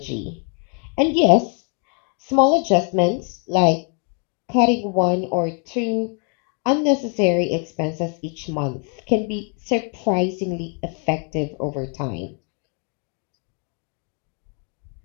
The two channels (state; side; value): quieter; right; 38.2 dB